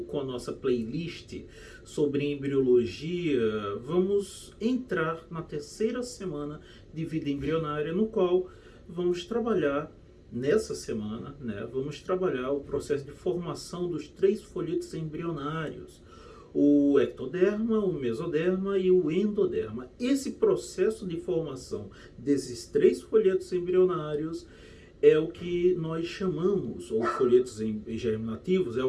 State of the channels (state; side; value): identical; both; correlation 1.00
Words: com a nossa playlist sobre embriologia, vamos entrar na terceira semana de vida embrionária, no qual vamos trabalhar nessa semana, vamos trabalhar o processo de formação dos 3 folhetos embrionários, o ectoderma, o mesoderma e o endoderma. Esse processo de formação desses 3 folhetos embrionários é o que nós chamamos, ou folhetos germinativos, é